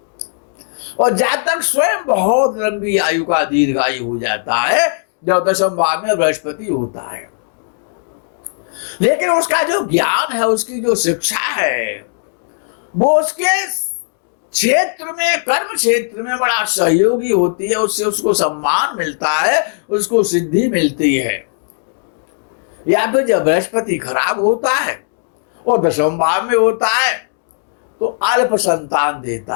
और जातक स्वयं बहुत लंबी आयु का दीर्घायु हो जाता है जब दशम भाव में बृहस्पति होता है। लेकिन उसका जो ज्ञान है, उसकी जो शिक्षा है, वो उसके क्षेत्र में, कर्म क्षेत्र में बड़ा सहयोगी होती है। उससे उसको सम्मान मिलता है, उसको सिद्धि मिलती है। या फिर जब बृहस्पति खराब होता है और दशम भाव में होता है तो अल्प संतान देता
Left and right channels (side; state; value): right; silent; digital silence